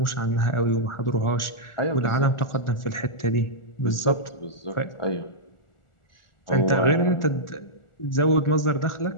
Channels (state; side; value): late; right; 1.4 ms